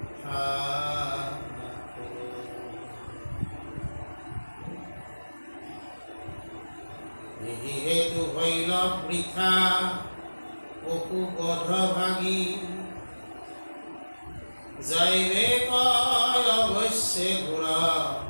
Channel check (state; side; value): inverted; both; correlation -1.00